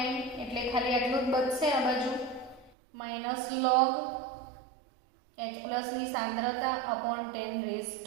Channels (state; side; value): drops out; left; at 2.7 s